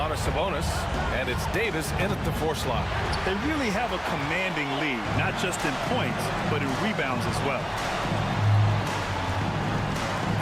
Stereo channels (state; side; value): identical; both; correlation 1.00